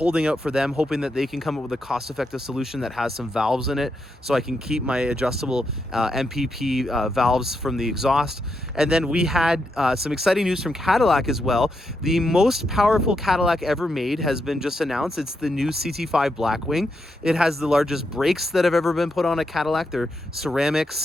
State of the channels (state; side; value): normal; both; correlation 0.83